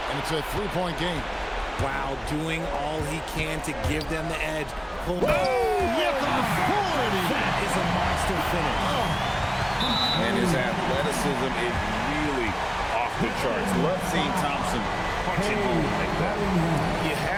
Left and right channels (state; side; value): identical; both; correlation 1.00